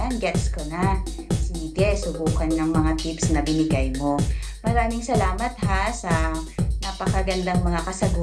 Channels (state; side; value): identical; both; correlation 1.00